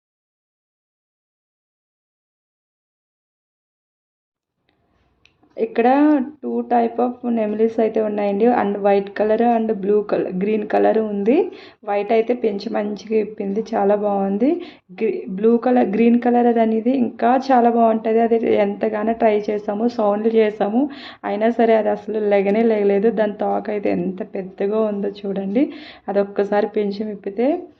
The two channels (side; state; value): both; identical; correlation 1.00